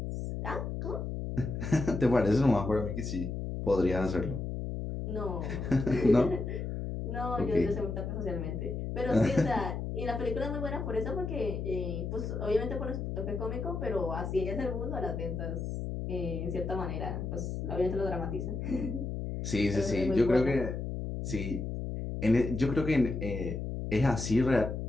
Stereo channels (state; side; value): noise; left; hum, 4 dB below the sound